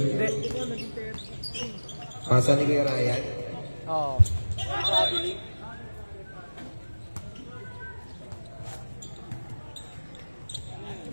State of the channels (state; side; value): inverted; both; correlation -1.00